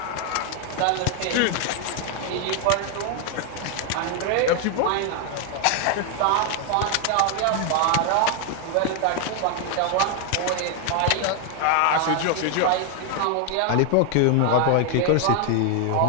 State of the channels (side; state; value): both; different; correlation 0.01